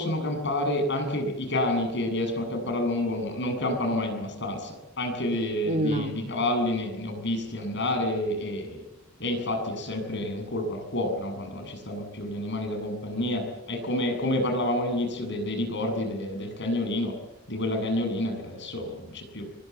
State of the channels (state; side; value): normal; both; correlation 0.25